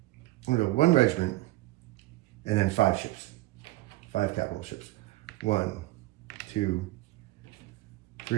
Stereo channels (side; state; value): left; quieter; 18.2 dB